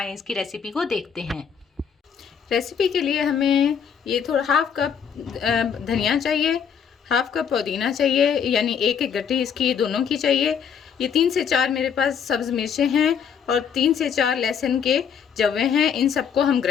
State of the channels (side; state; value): right; quieter; 7.4 dB